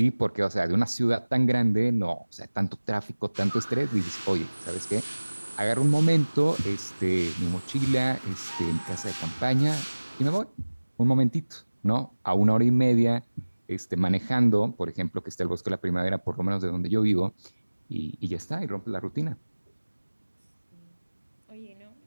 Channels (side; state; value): both; inverted; correlation -1.00